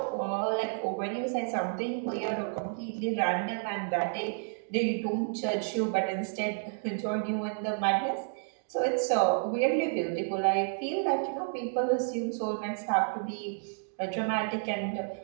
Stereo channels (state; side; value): silent; left; digital silence